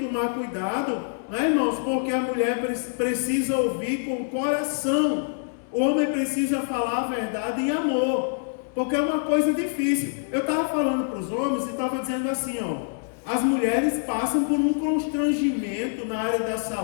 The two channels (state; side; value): silent; right; 61 dB below the other